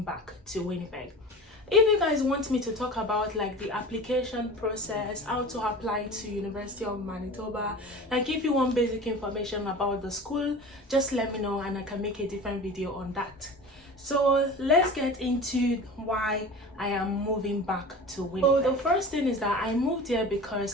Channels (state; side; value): normal; both; correlation 0.36